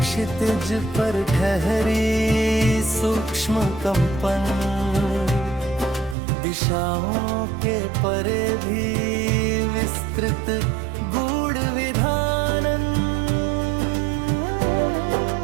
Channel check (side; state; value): left; drops out; at 6.2 s